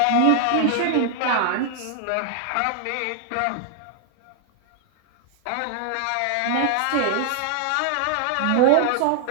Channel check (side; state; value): both; different; correlation 0.00